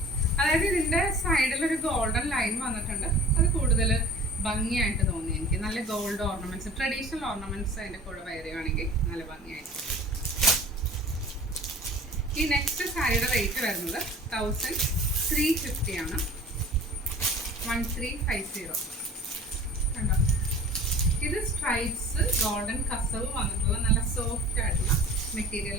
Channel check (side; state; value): both; normal; correlation 0.43